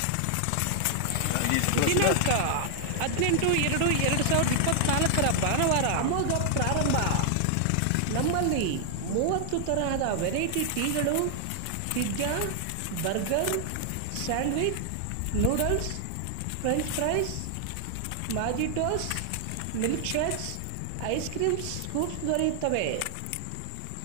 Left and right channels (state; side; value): different; both; correlation 0.00